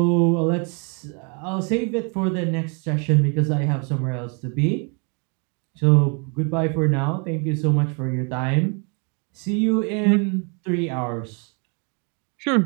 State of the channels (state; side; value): quieter; left; 36.5 dB